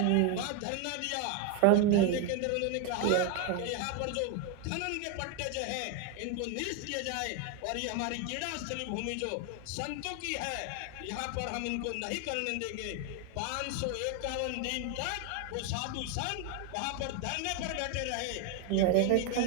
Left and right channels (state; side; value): different; both; correlation 0.01